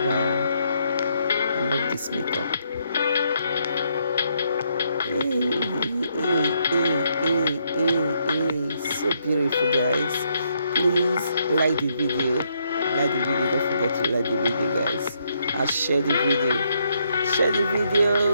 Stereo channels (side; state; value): both; inverted; correlation -0.75